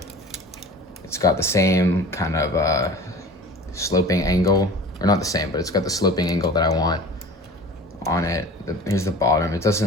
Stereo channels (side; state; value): both; normal; correlation 0.40